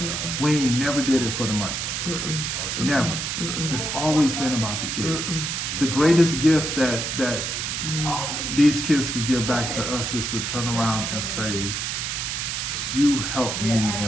We never did it for the money. Never. It's always been about the kids. The greatest gift that these kids could give back to us is to turn around and say, you helped me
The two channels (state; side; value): noise; right; hiss, 2 dB below the sound